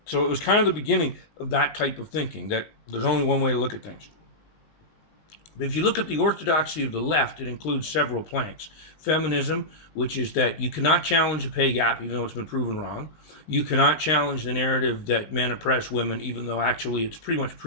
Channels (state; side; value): late; right; 19 ms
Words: So it was kind of the beginning of that type of thinking, that there's only one way to look at things. But if you look at the orthodoxy of the left, it includes several planks. Feminism, which is that you cannot challenge a pay gap, even though it's been proven wrong. You cannot challenge the narrative that men oppress women, even though actually it's pretty much